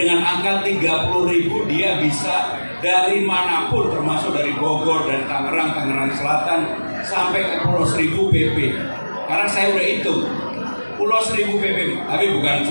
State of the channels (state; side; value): inverted; both; correlation -1.00